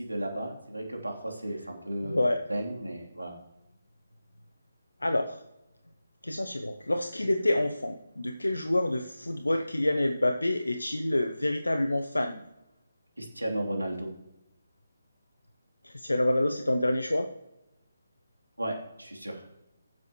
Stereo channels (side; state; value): both; inverted; correlation -0.95